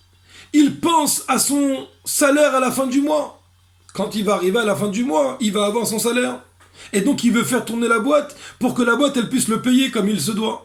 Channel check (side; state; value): both; identical; correlation 1.00